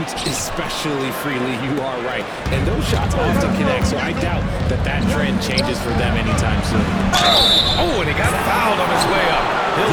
especially freely. You are right. And those shots often connect, so I doubt that that trend changes for them anytime soon. Oh, and he got fouled on his way up.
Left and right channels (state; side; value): identical; both; correlation 1.00